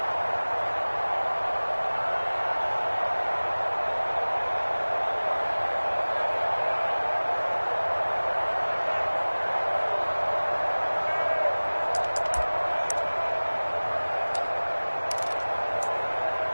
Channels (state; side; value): inverted; both; correlation -1.00